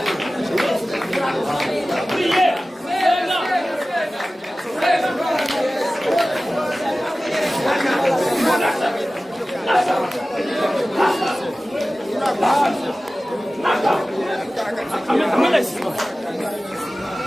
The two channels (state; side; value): normal; both; correlation 0.96